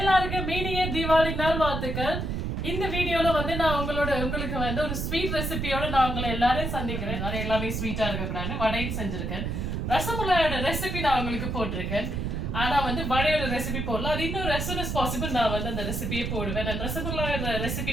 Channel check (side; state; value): right; noise; rumble, 2 dB below the sound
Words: மீனிய தீபாவளி நாள் வாழ்த்துக்கள். இந்த வீடியோல வந்து நான் உங்களுக்கு வந்து ஒரு ஸ்வீட் ரெசிபியோட நான் உங்களை எல்லாரையும் சந்திக்கிறேன். எல்லாமே ஸ்வீட்டா இருக்கக்கூடாது. வடையும் செஞ்சிருக்கேன். ரசமலாயோட ரெசிபி நான் உங்களுக்கு போட்டிருக்கேன். ஆனா வந்து வடையோட ரெசிபி போடல. அது இன்னும் as soon as possible நான் வந்து அந்த ரெசிபியை போடுவேன். அந்த ரசமலாயோட